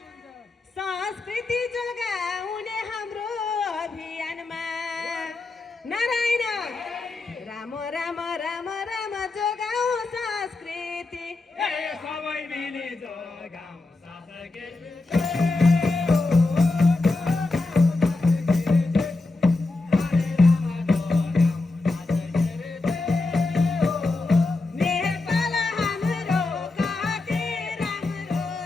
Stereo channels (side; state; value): right; quieter; 3.3 dB